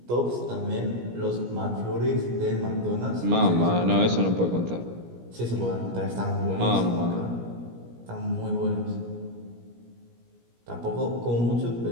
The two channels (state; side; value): late; left; 17 ms